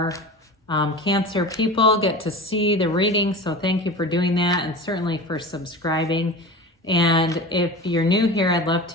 Cancer people get to see the reading, so thank you for doing that, and certainly for subscribing. And if you're new here, I'd love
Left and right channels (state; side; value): normal; both; correlation 0.32